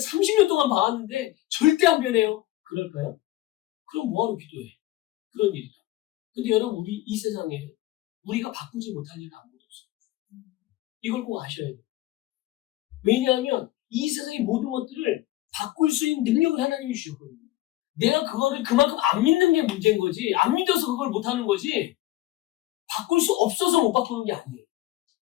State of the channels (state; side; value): quieter; right; 16.3 dB